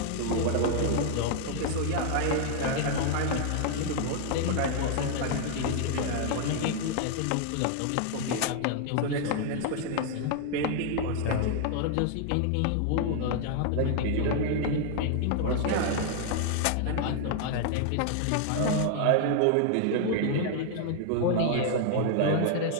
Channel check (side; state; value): both; different; correlation -0.01